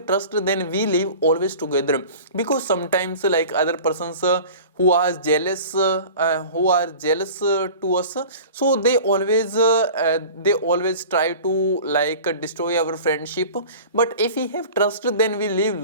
trust, then we live always together, because sometimes other persons who are jealous to us, so they always try to like destroy our friendship. But if we have trust, then we live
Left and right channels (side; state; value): both; inverted; correlation -0.40